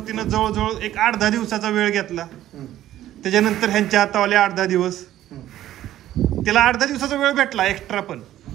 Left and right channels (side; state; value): left; quieter; 13.1 dB